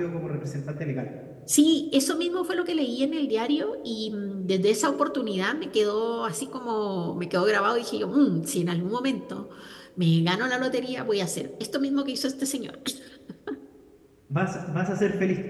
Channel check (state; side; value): identical; both; correlation 1.00